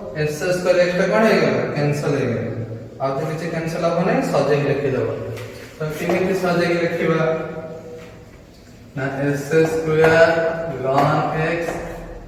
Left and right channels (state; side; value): identical; both; correlation 1.00